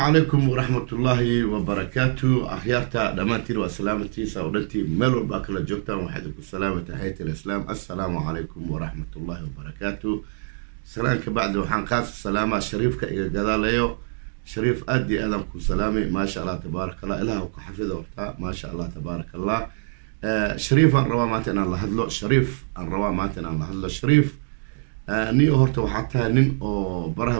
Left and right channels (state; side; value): silent; left; digital silence